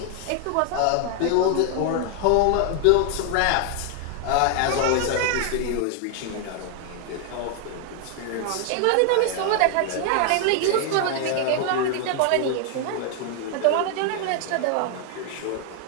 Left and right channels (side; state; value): both; different; correlation 0.00